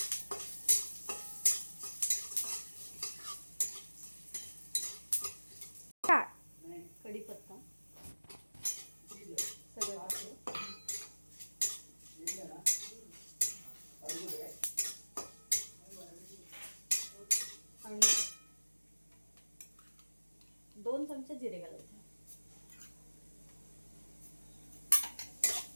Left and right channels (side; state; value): both; inverted; correlation -1.00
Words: कढीपत्ता सगळं घातलं आणि 2 चमचे जिरे घालायचे।